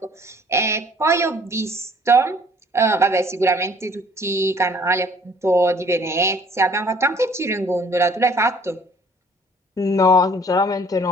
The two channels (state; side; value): normal; both; correlation 0.57